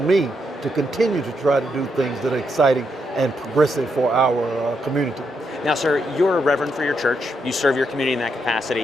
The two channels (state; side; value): normal; both; correlation 0.80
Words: me to continue to try to do things that are exciting and progressive for our community. Now, sir, you're a reverend for your church. You serve your community in that